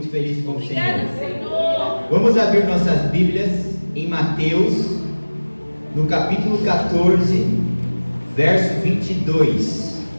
feliz com o Obrigada, Senhor. Vamos abrir nossas Bíblias em Mateus, no capítulo 14, verso 22.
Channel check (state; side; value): inverted; both; correlation -1.00